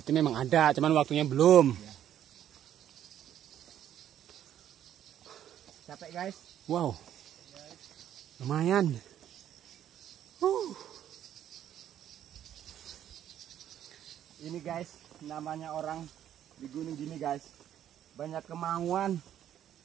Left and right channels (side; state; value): left; quieter; 10.8 dB